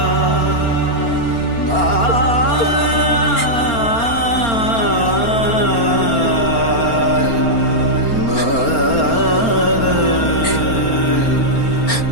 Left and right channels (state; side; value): late; right; 4.4 ms